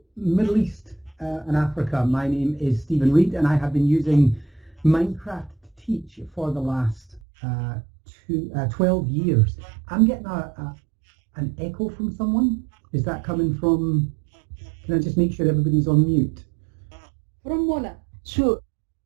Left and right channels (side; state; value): left; drops out; at 7.2 s